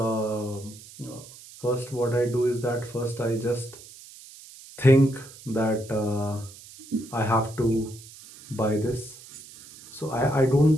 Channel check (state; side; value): noise; right; hiss, 19 dB below the sound